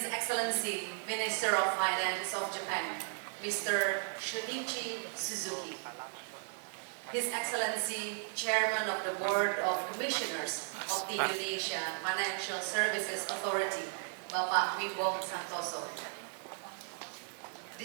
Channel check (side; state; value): left; silent; 54 dB below the other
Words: Excellency, Minister of Finance of Japan, Mr. Shunichi Suzuki. His Excellency, Chairman of the Board of Commissioners of the Indonesia Financial Services Authority, Bapak Wimbo Santoso.